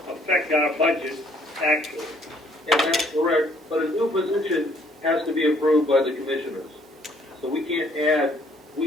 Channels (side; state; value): both; normal; correlation 0.63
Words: our budget, actually. And that's correct, but a new position has to be approved by the commissioners. So we can't add